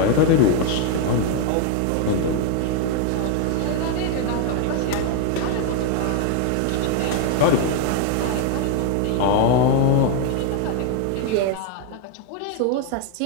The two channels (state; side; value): different; both; correlation 0.01